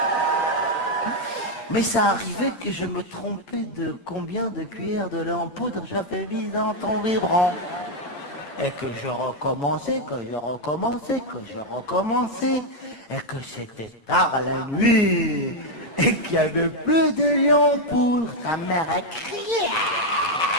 Mais ça arrivait que je me trompais de combien de cuillères de lait en poudre j'avais mis dans ton biberon. Et que je recommençais, et que c'était tard la nuit, et qu'il n'y avait plus de lait en poudre. Ta mère a crié.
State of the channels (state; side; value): late; right; 8.8 ms